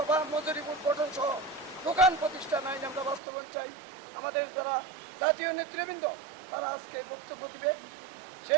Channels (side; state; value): left; drops out; at 3.2 s